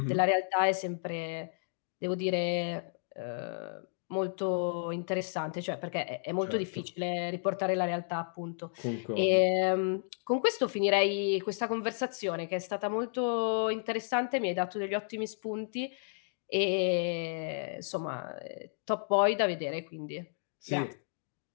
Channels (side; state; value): right; silent; digital silence